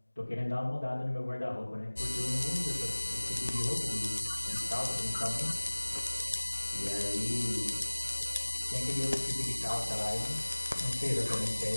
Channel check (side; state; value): both; inverted; correlation -1.00